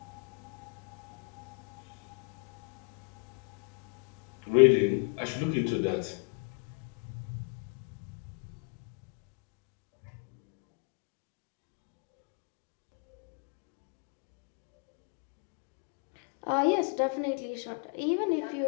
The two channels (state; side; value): quieter; right; 37.3 dB